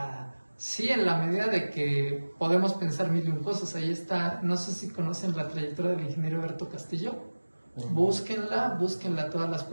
sí, en la medida de que podemos pensar mil y un cosas. Ahí está, no sé si conocen la trayectoria del ingeniero Alberto Castillo. Búsquenla todas las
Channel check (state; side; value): inverted; both; correlation -1.00